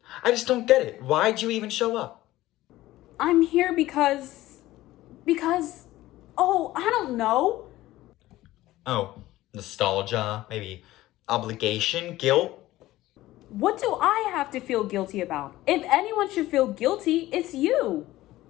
I just don't get it. Why'd you even show up? I'm here because, oh, I don't know. Oh, nostalgia, maybe obligation, guilt? What do I have to feel guilty about? If anyone should feel guilty, it's you.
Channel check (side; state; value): right; quieter; 16.4 dB